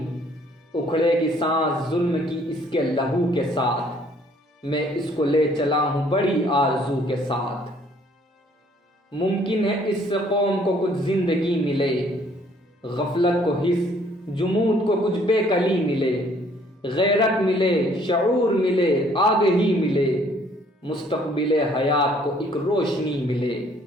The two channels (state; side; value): normal; both; correlation 0.61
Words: اکھڑے گی سانس ظلم کی اس کے لہو کے ساتھ، میں اس کو لے چلا ہوں بڑی آرزو کے ساتھ، ممکن ہے اس سے قوم کو کچھ زندگی ملے، غفلت کو حس جمود کو کچھ بے کلی ملے، غیرت ملے شعور ملے آگہی ملے، مستقبل حیات کو ایک روشنی ملے،